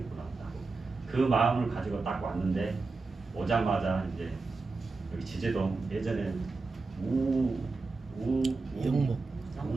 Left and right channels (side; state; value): left; quieter; 3.9 dB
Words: 하고 그 마음을 가지고 딱 왔는데 오자마자 이제 여기 지제동 예전에